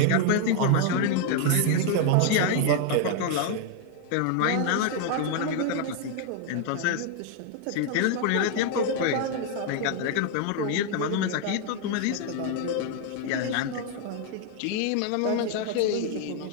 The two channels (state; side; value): different; both; correlation 0.00